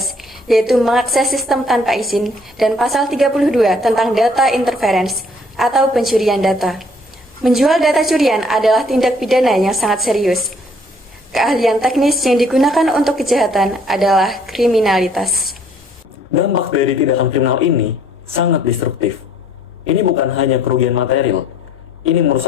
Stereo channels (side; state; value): both; normal; correlation 0.61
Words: yaitu mengakses sistem tanpa izin, dan pasal 32 tentang data interference atau pencurian data. Menjual data curian adalah tindak pidana yang sangat serius. Keahlian teknis yang digunakan untuk kejahatan adalah kriminalitas. Dampak dari tindakan kriminal ini sangat destruktif. Ini bukan hanya kerugian material, ini